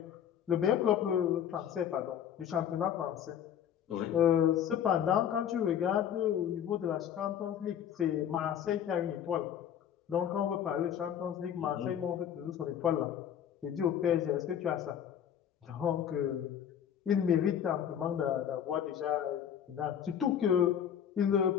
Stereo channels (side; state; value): right; quieter; 9.3 dB